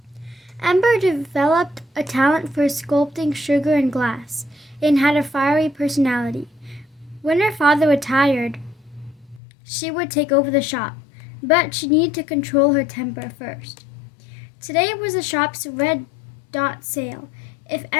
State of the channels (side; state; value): right; drops out; at 9.4 s